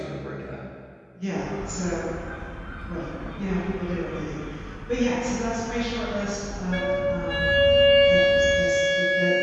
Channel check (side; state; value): both; identical; correlation 1.00